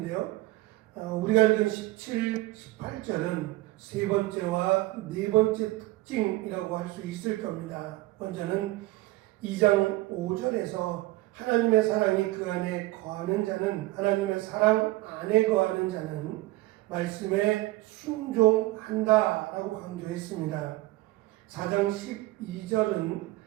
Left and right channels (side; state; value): left; quieter; 19.1 dB